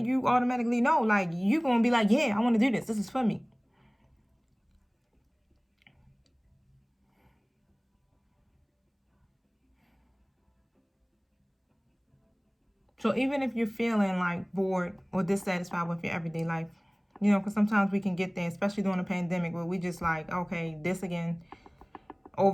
you automatically know, like, you're going to be like, yeah, I want to do this. This is for me. So even if you're feeling like bored or dissatisfied with your everyday life, you know, because sometimes we can get there, especially during a pandemic, where we just like, okay, this again,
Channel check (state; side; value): identical; both; correlation 1.00